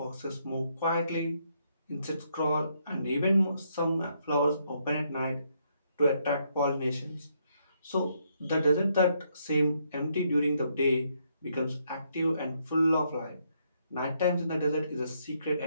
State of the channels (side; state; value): both; inverted; correlation -0.74